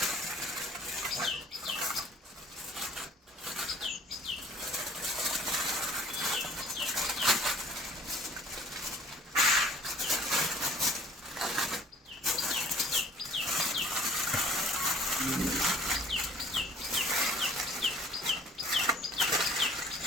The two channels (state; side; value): normal; both; correlation 0.52